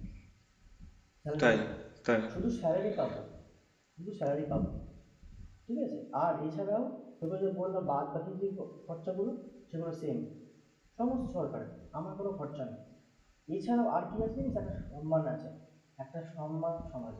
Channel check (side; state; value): both; identical; correlation 1.00